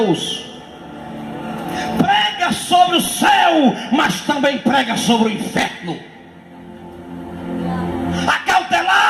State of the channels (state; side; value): identical; both; correlation 1.00